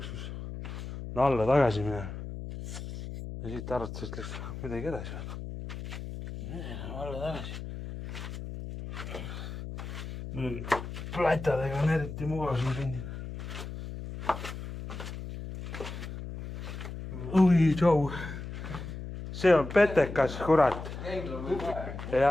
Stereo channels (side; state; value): left; noise; hum, 8 dB below the sound